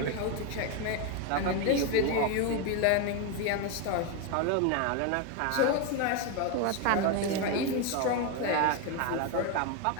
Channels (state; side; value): different; both; correlation 0.02